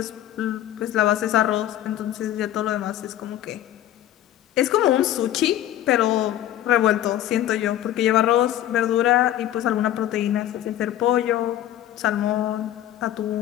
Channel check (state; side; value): quieter; right; 12.5 dB